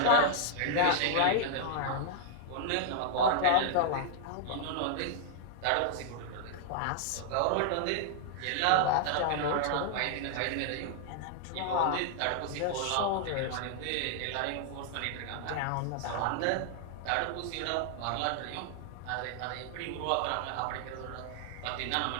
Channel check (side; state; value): both; different; correlation -0.01